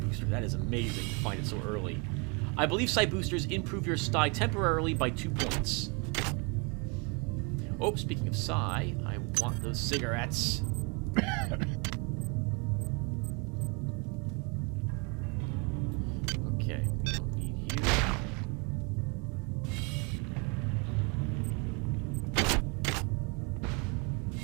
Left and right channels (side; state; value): left; quieter; 31.1 dB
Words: that is amazing to find it so early. I believe Psi Boosters improve your Psi temporarily by 2 points. Oh, speaking of Psi, I want those cigarettes. Okay, we don't need you.